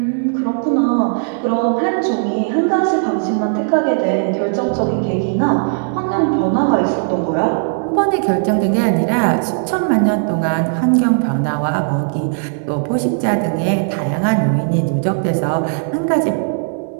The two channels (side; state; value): left; silent; 60 dB below the other